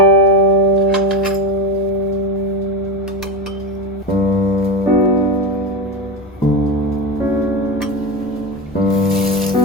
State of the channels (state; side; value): normal; both; correlation 0.18